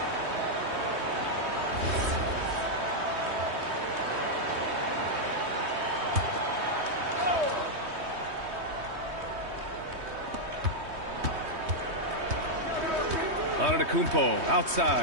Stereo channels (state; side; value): late; left; 3.2 ms